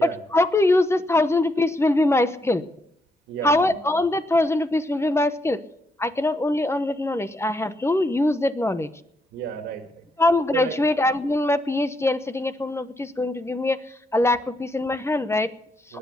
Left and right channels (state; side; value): normal; both; correlation 0.78